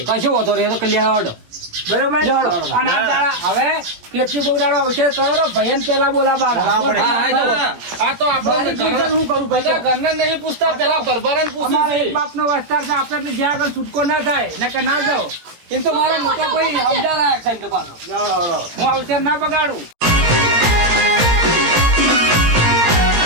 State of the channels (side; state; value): left; late; 17 ms